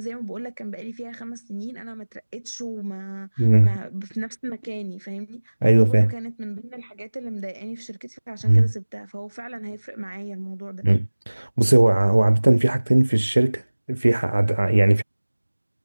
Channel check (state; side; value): inverted; both; correlation -1.00